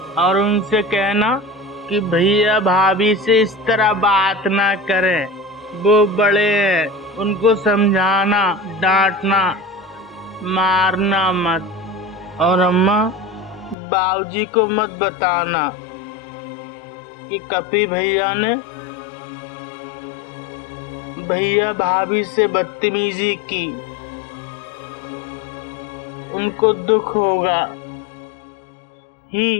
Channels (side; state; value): right; drops out; at 13.8 s